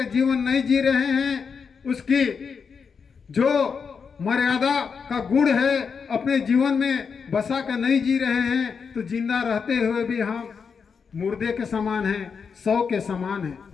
जीवन नहीं जी रहे हैं, उसकी जो मर्यादा का गुण है अपने जीवन में बसा के नहीं जी रहे हैं, तो जिंदा रहते हुए भी हम मुर्दे के समान हैं, सौ के समान हैं।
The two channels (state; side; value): quieter; right; 5.9 dB